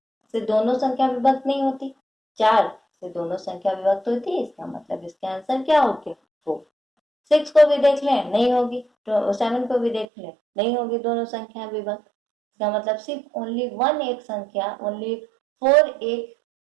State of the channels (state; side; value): drops out; left; at 10.1 s